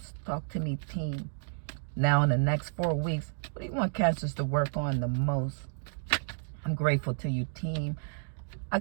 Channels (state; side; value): silent; left; digital silence